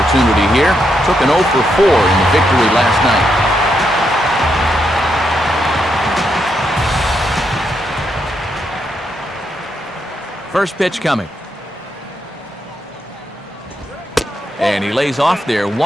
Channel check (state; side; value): normal; both; correlation 0.80